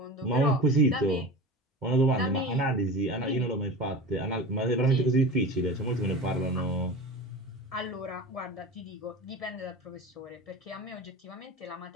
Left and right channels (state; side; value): normal; both; correlation 0.32